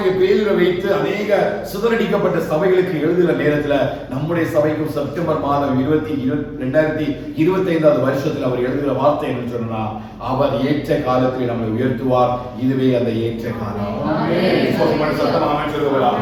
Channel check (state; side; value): identical; both; correlation 1.00